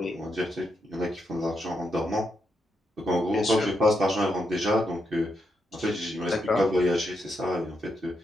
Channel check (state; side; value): normal; both; correlation 0.82